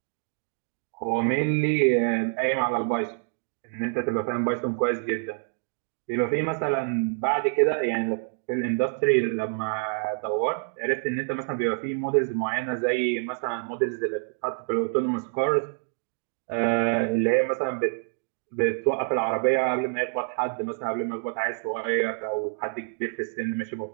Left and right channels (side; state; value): left; silent; digital silence